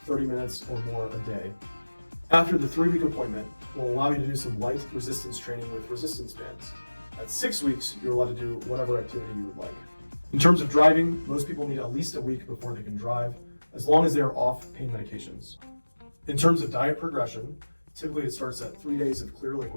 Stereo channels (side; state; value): both; inverted; correlation -1.00